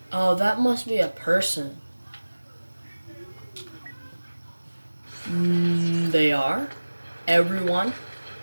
Oh, that must be a person. They are. Everyone.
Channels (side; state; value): both; inverted; correlation -1.00